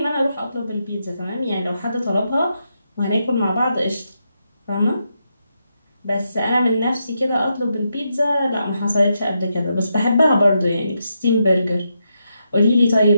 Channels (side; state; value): both; inverted; correlation -0.83